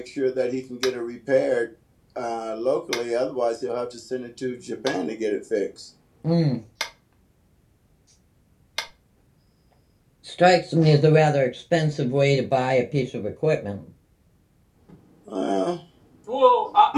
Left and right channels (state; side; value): identical; both; correlation 1.00